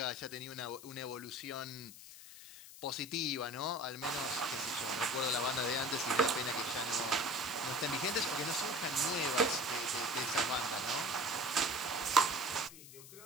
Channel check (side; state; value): left; noise; hiss, 16 dB below the sound